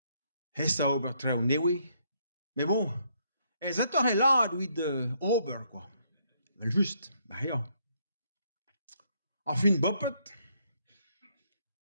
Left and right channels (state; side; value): inverted; both; correlation -0.71